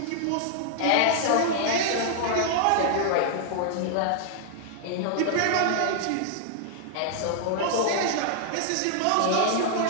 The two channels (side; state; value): both; different; correlation 0.00